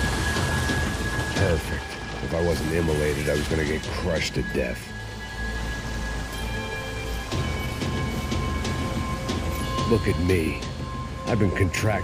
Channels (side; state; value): both; identical; correlation 1.00